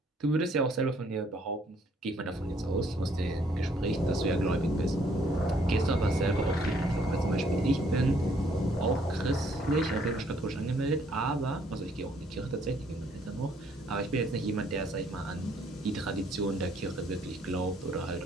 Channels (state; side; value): normal; both; correlation 0.65